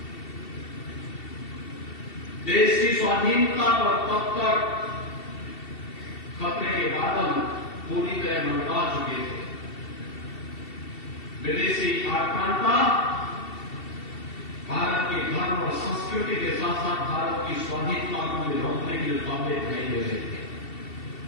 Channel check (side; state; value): right; late; 2.7 ms